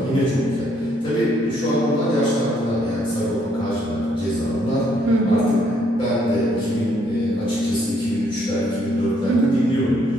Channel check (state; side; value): normal; both; correlation 0.69